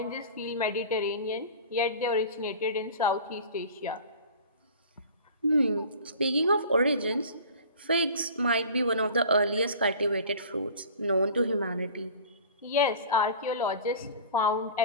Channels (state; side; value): inverted; both; correlation -0.41